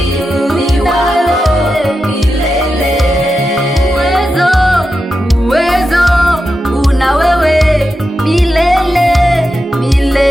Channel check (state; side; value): normal; both; correlation 0.89